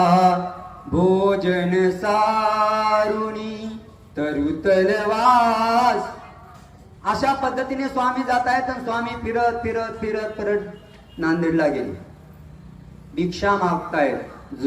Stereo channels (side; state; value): both; identical; correlation 1.00